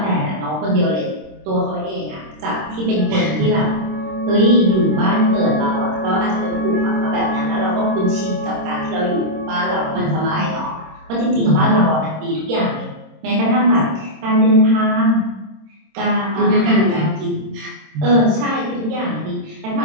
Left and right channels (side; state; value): left; late; 26 ms